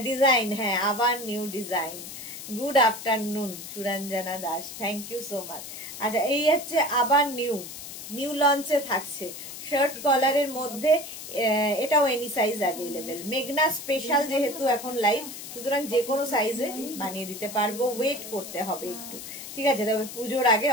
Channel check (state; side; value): noise; left; hiss, 11 dB below the sound